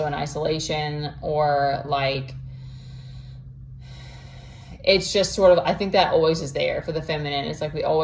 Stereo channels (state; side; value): identical; both; correlation 1.00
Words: in isolation, or like, it's just sort of, I think that always is there for the feminine. It's like we